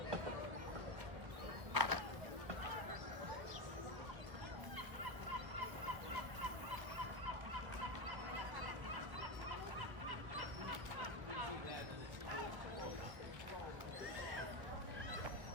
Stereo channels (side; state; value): left; late; 1.1 ms